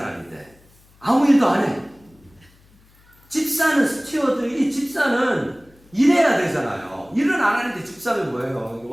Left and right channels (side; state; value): left; noise; hum, 30 dB below the sound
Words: 아무 일도 안 해. 집사는 스튜어드, 이 집사는 일해야 되잖아요. 일은 안 하는데 집사는 뭐예요?